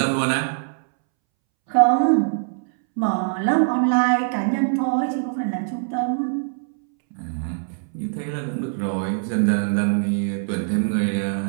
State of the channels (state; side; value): silent; left; 64 dB below the other